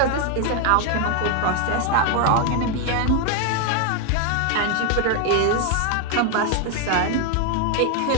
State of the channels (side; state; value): both; different; correlation 0.01